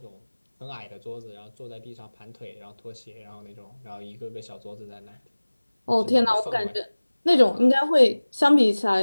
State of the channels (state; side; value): inverted; both; correlation -1.00